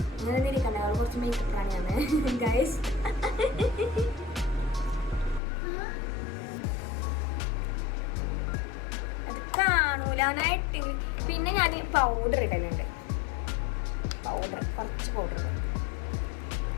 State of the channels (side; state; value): right; drops out; at 5.4 s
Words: അങ്ങനെ ഇരിക്കണ്ട, അവൾ കുറച്ച് മേക്കപ്പ് പ്രാണിയാണ് ഗൈസ്. അത് കാണൂലാനായിട്ട്. പിന്നെ ഞാൻ പൗഡർ ഇടലുണ്ട്, കുറച്ച് പൗഡർ